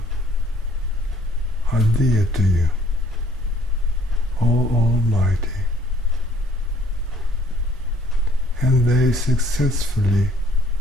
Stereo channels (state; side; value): normal; both; correlation 0.60